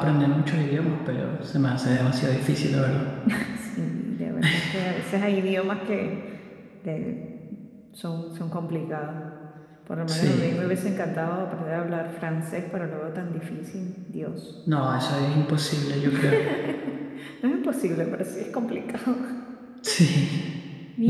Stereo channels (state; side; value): identical; both; correlation 1.00